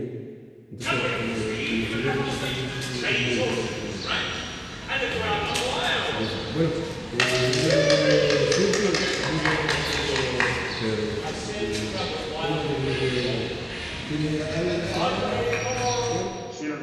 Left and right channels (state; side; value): identical; both; correlation 1.00